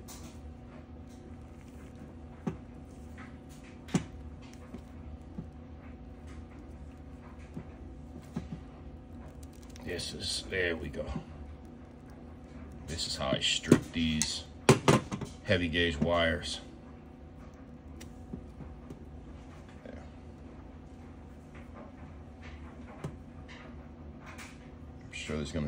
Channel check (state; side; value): identical; both; correlation 1.00